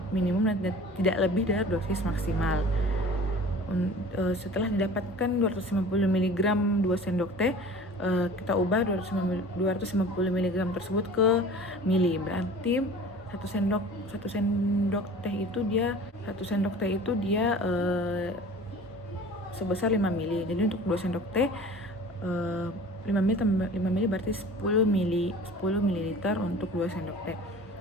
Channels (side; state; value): both; normal; correlation 0.42